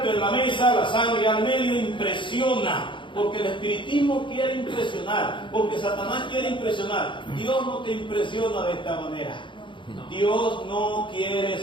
en la mesa, la sangre al medio, impresiona. Porque el espiritismo quiere impresionar, porque Satanás quiere impresionar. Dios no te impresiona de esta manera. Dios no quiere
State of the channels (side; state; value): right; late; 0.24 ms